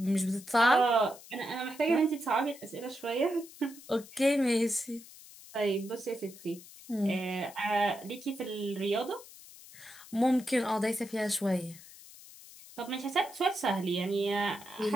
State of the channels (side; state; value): left; noise; hiss, 19 dB below the sound